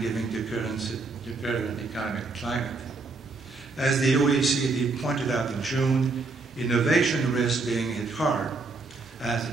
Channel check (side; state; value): left; quieter; 3.8 dB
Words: given the current economic climate. As the OECD pointed out in June, innovation risks being hit hard as the